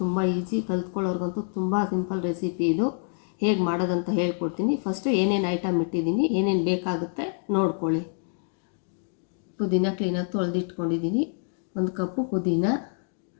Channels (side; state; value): right; silent; 60 dB below the other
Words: ತುಂಬ ಈಸಿ, ಕಲ್ತ್ಕೊಳ್ಳೋರ್ಗಂತೂ ತುಂಬ ಸಿಂಪಲ್ ರೆಸಿಪಿ ಇದು. ಹೇಗೆ ಮಾಡೋದಂತ ಹೇಳ್ಕೊಡ್ತೀನಿ. ಫಸ್ಟು ಏನೇನು ಐಟಮ್ ಇಟ್ಟಿದ್ದೀನಿ, ಏನೇನು ಬೇಕಾಗುತ್ತೆ ನೋಡ್ಕೊಳ್ಳಿ. ಪುದೀನ ಕ್ಲೀನಾಗಿ ತೊಳೆದಿಟ್ಕೊಂಡಿದ್ದೀನಿ. 1 ಕಪ್ಪು ಪುದೀನ